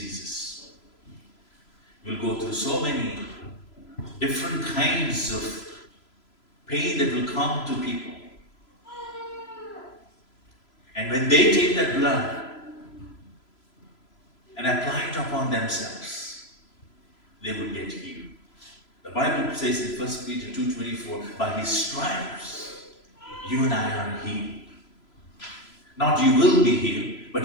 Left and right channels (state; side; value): late; right; 3.0 ms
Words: We'll go through so many different kinds of pain that will come to people. And when they take that blood and apply it upon themselves, they will get healed. The Bible says in 1 Peter 2:24, by his stripes, you and I are healed. Not you will be healed,